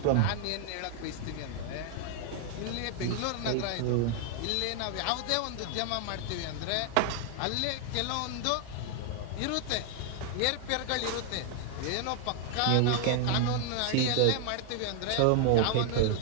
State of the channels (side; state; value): both; different; correlation 0.00